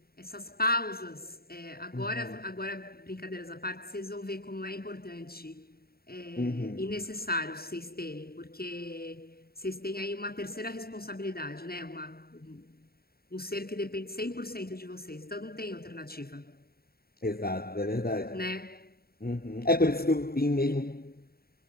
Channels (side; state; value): right; late; 0.45 ms